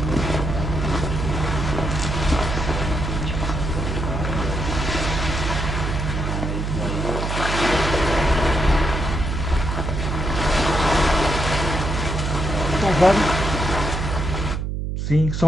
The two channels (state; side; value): noise; right; hum, 2 dB below the sound